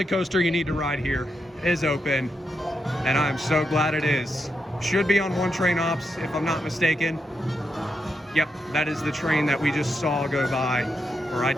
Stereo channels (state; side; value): normal; both; correlation 0.84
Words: coaster you need to ride here is open, and I'm so glad it is. Should be on one train ops, if I'm not mistaken. Yep, that is the train that we just saw go by, or I